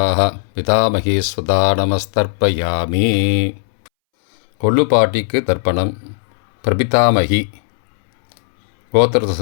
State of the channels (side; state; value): right; silent; 67 dB below the other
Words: பிதாமகீஸ்வதா நமஸ்தர்ப்பயாமி. கொள்ளு பாட்டிக்கு தர்ப்பணம். பிரபிதாமகி கோத்திரத்தை